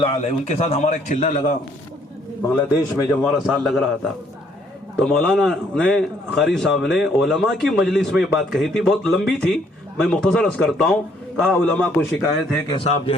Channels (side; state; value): both; normal; correlation 0.66